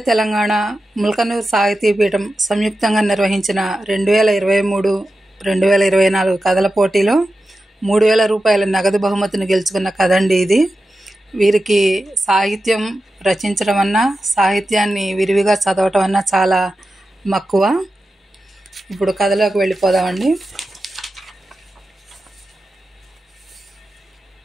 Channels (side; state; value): both; normal; correlation 0.92